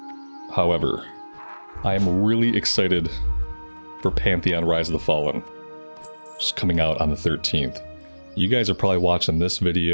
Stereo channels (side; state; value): both; inverted; correlation -1.00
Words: however, I am really excited for Pantheon Rise of the Fallen, which is coming out on the 13th. You guys are probably watching this